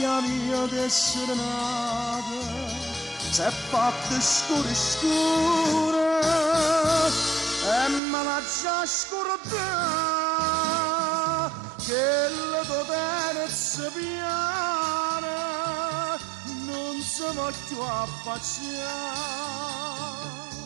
a mia d'essere nata s'è fatta scura e me la già scordata che la tua tenerezza piana non si va più a affacciare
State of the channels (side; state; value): left; drops out; at 8.0 s